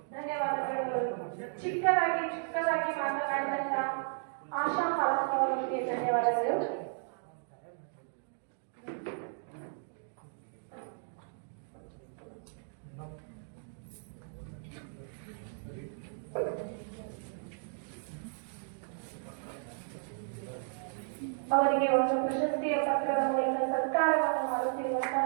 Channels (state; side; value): silent; left; digital silence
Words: ಧನ್ಯವಾದಗಳು. ಚಿಕ್ಕದಾಗಿ ಮಾತನಾಡಿದಂತ ಆಶಾ ಹಾಲಪ್ಪ ಅವರಿಗೆ ಧನ್ಯವಾದಗಳು. ಅವರಿಗೆ ಒಂದು ಪ್ರಶಸ್ತಿಯ ಪತ್ರದ ಮೂಲಕ ಸತ್ಕಾರವನ್ನು ಮಾಡುತ್ತಿರುವಂತಹ